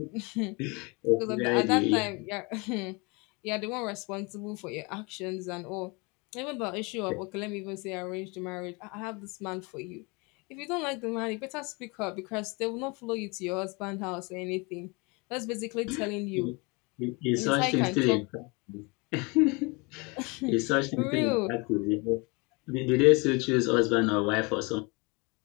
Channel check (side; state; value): right; quieter; 28.4 dB